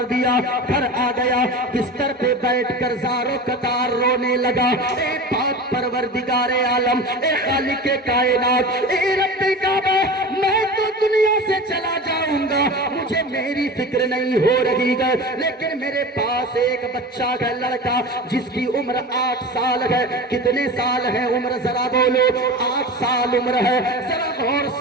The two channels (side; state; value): both; normal; correlation 0.32